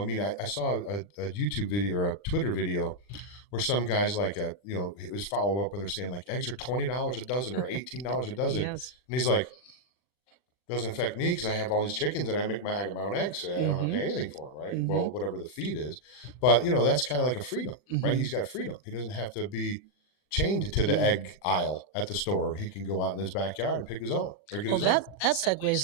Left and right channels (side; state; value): right; late; 40 ms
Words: mean, I saw a YouTube video or a Twitter video where some guys like it was follow up where they're saying like eggs are $20 a dozen or $18 a dozen, Yes. and he's like, doesn't affect me because I have all these chickens and I get my own eggs. So I don't have to Mm-hmm. pay anything for them, right? Mm-hmm. Well, whatever the feed is, but that's kind of like a freedom, right? Mm-hmm. He's got freedom. He doesn't have to be chained to the Mm. egg aisle at the store. He can go out in his backyard and pick his own or get Well, his own. that segues